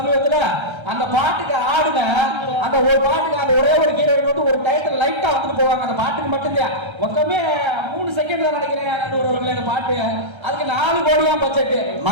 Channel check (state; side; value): late; left; 1.3 ms